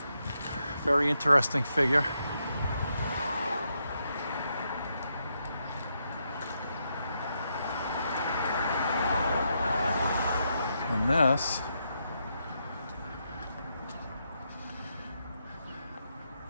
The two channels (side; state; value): both; inverted; correlation -0.81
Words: Very interesting figure. And this